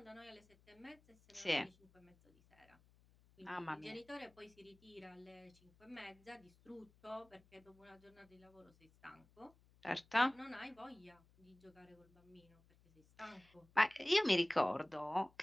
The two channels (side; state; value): left; noise; hum, 28 dB below the sound